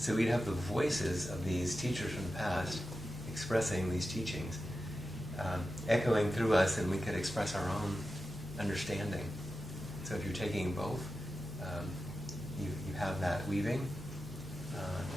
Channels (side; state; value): right; noise; hum, 16 dB below the sound